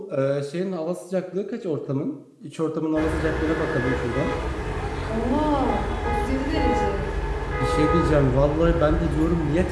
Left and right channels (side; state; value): both; identical; correlation 1.00